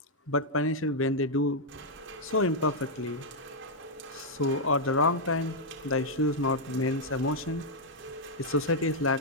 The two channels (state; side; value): normal; both; correlation -0.04